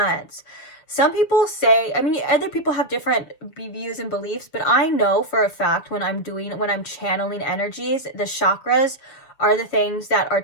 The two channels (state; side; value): late; right; 7.3 ms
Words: Some people say, I mean, other people have different views and beliefs, but I know for a fact when I'm channeling energies, the chakras are the things that are